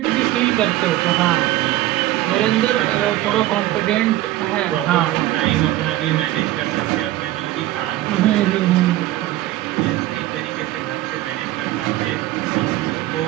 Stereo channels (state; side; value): quieter; left; 15.6 dB